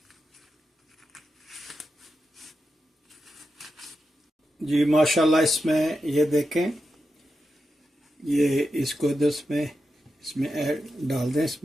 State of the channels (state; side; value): normal; both; correlation 0.89